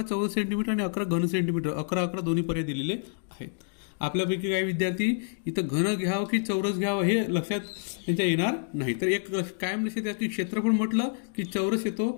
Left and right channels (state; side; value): silent; right; digital silence